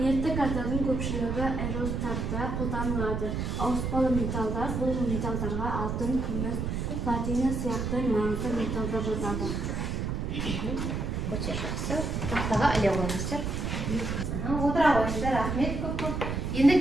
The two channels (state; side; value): noise; right; rumble, 2 dB below the sound